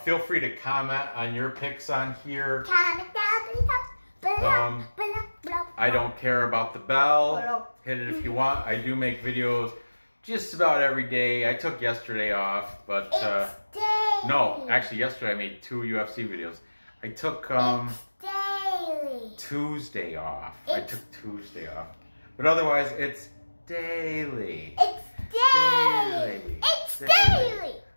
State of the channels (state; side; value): inverted; both; correlation -1.00